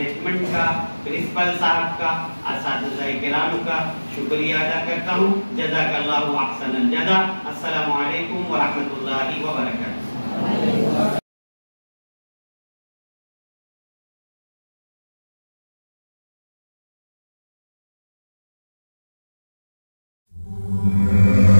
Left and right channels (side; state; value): both; inverted; correlation -1.00